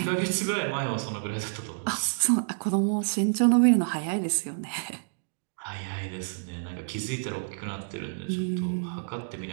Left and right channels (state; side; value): silent; left; digital silence